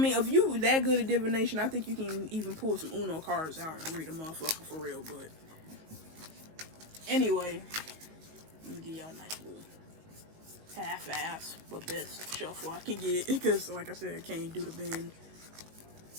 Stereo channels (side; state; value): left; late; 19 ms